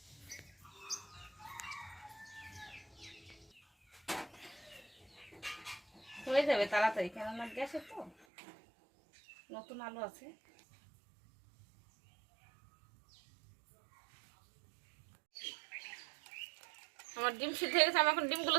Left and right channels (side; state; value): left; drops out; at 8.2 s